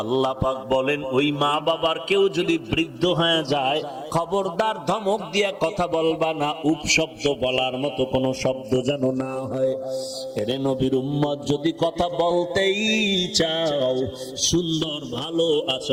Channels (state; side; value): identical; both; correlation 1.00